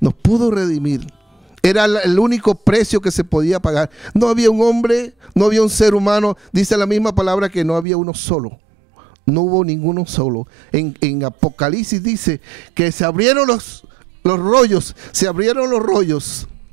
nos pudo redimir. Era el único precio que se podía pagar. No había un hombre, no había un ser humano. Dice la misma palabra que no había uno solo. No hubo ninguno solo. En Apocalipsis dice que se abrieron los rollos. Se abrieron los rollos.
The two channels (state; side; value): drops out; left; at 7.9 s